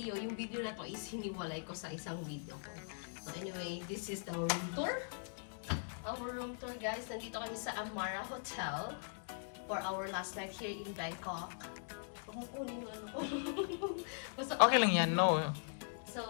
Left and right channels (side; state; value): right; silent; digital silence